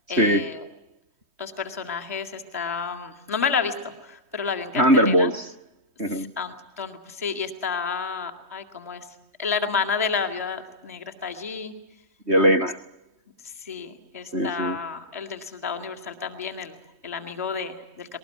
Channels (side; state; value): left; late; 3.2 ms